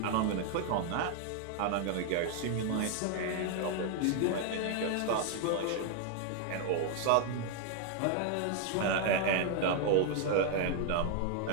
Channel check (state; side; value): different; both; correlation 0.00